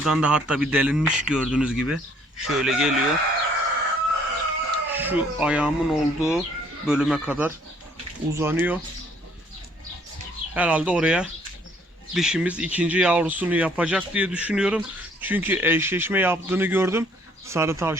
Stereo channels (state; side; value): normal; both; correlation 0.62